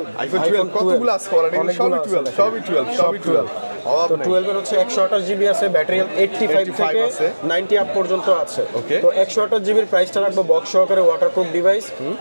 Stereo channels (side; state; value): both; inverted; correlation -1.00